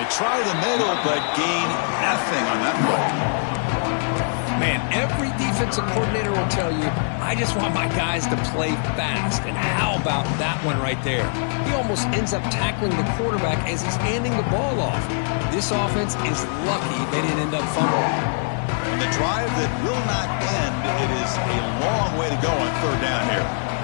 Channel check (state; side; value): silent; right; digital silence